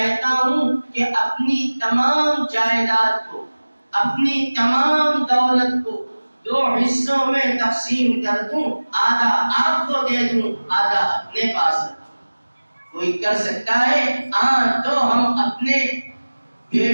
ہوں کہ اپنی تمام جائیداد کو، اپنی تمام دولت کو 2 حصوں میں تقسیم کر دوں، آدھا آپ کو دے دوں، آدھا اپنے پاس رکھوں۔ کوئی کر سکتا ہے؟ ہاں، تو ہم اپنے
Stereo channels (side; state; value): both; inverted; correlation -1.00